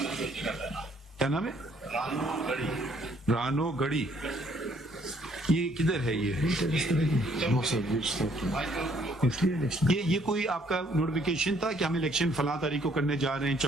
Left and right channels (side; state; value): both; normal; correlation 0.65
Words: کیا نام ہے؟ رانو گڑی. یہ کدھر ہے؟ یہ کوئی آپ کا نوٹیفیکیشن تھا کہ ہم الیکشن فلاں تاریخ کو کرنے جا رہے ہیں